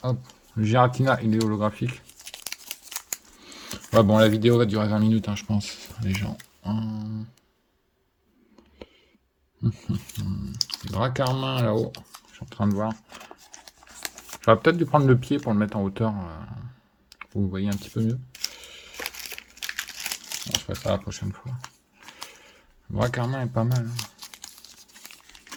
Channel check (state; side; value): identical; both; correlation 1.00